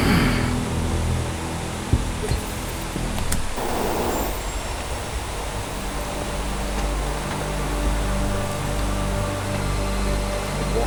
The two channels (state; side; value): identical; both; correlation 1.00